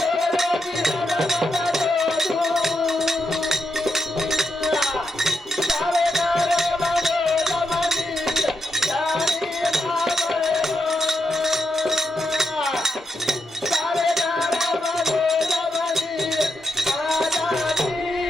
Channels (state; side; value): normal; both; correlation 0.84